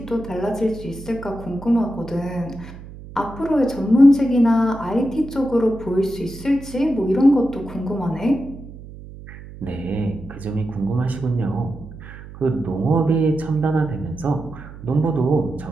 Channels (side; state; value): right; noise; hum, 15 dB below the sound